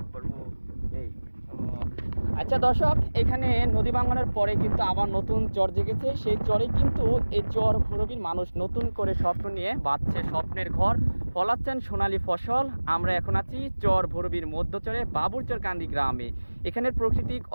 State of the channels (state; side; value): inverted; both; correlation -1.00